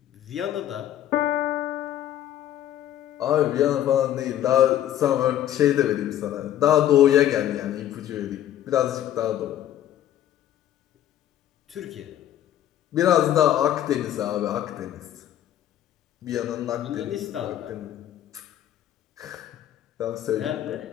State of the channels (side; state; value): right; quieter; 11.8 dB